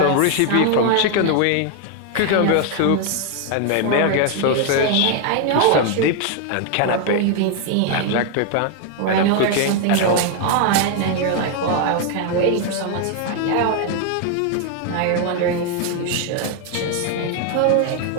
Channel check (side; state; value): both; different; correlation 0.00